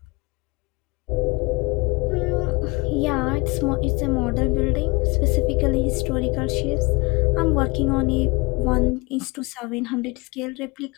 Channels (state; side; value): quieter; right; 25.8 dB